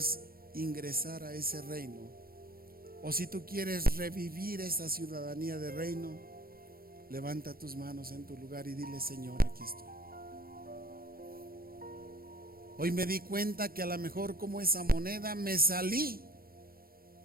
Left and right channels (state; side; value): late; left; 0.43 ms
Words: ingresar a ese reino, o si tú quieres revivir esa ciudadanía de reino, levanta tus manos en tu lugar y dile: Señor, aquí estoy. Hoy me di cuenta que a lo mejor, como esa moneda, me salí